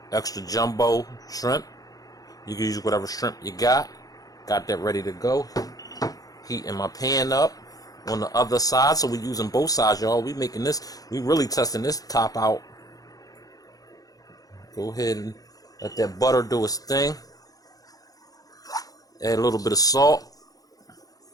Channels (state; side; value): late; right; 0.18 ms